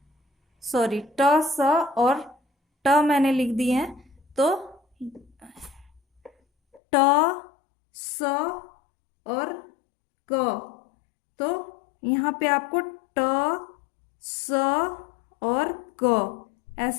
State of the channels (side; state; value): right; drops out; at 6.8 s